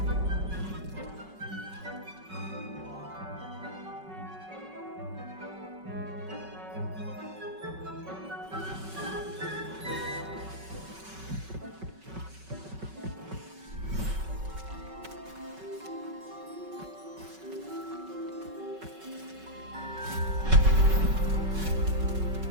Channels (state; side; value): late; left; 5.3 ms